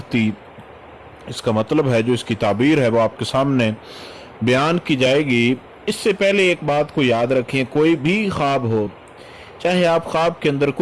اس کا مطلب ہے، جو اس کی تعبیر ہے، وہ آپ کے سامنے بیان کی جائے گی۔ اس سے پہلے ایک بات کو یاد رکھیں، کوئی بھی خواب ہو، چاہے آپ خواب کے اندر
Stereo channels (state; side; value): identical; both; correlation 1.00